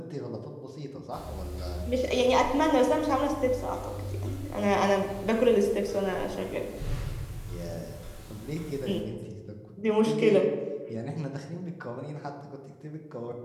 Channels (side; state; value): both; identical; correlation 1.00